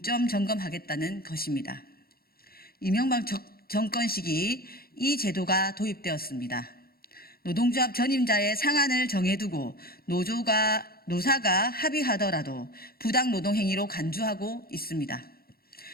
점검하겠다는 것입니다. 이명박 정권 시기 이 제도가 도입되었습니다. 노동조합 전임자의 상한을 정해두고 노사가 합의하더라도 부당 노동행위로 간주하고 있습니다.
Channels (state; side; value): late; right; 0.44 ms